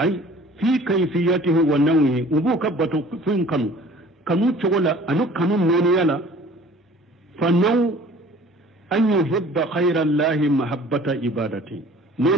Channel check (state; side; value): normal; both; correlation 0.49